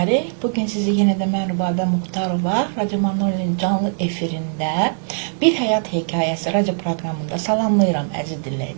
Bugün sizi yenə də mən Rübabə Muxtarova Radio Marnoli'nin canlı efirində bir həyat hekayəsi radio proqramında salamlayıram əziz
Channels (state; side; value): silent; left; digital silence